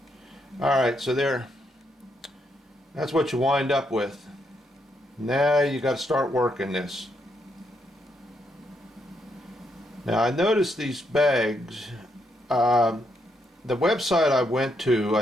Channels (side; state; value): both; normal; correlation 0.78